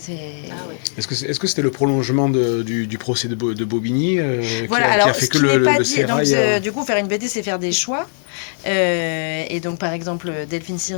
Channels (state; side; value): silent; right; 66 dB below the other